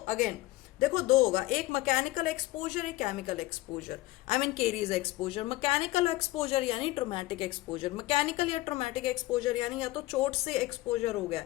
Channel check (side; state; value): right; quieter; 18.3 dB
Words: देखो दो होगा, एक मैकेनिकल एक्सपोजर, एक chemical exposure, I mean caries exposure. Mechanical exposure यानी ट्रोमेटिक एक्सपोजर, मैकेनिकल या ट्रोमेटिक एक्सपोजर यानी या तो चोट से एक्सपोजर हो गया,